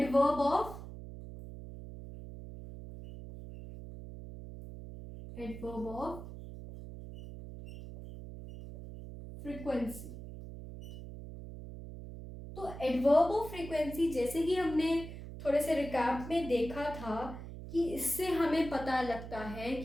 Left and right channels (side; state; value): right; noise; hum, 11 dB below the sound